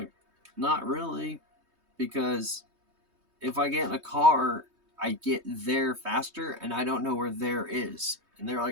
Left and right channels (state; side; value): late; left; 3.2 ms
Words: not really, because if I get in a car, I get there faster, and I don't know where there is. And they're